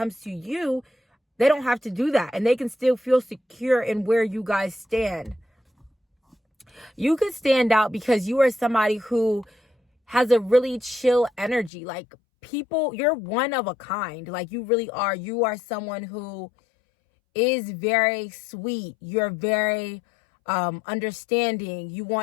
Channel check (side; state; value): right; drops out; at 11.7 s